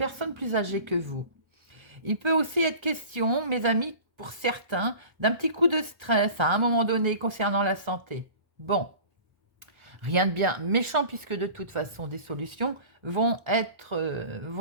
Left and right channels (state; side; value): late; left; 1.1 ms